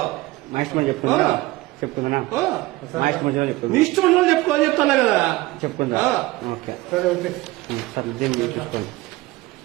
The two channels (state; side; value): quieter; left; 19.4 dB